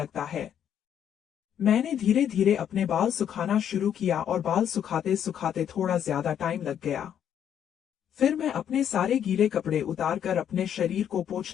है। मैंने धीरे धीरे अपने बाल सुखाना शुरू किया और बाल सुखाते सुखाते थोड़ा ज्यादा टाइम लग गया। फिर मैं अपने सारे गीले कपड़े उतारकर अपने शरीर को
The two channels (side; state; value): right; quieter; 9.4 dB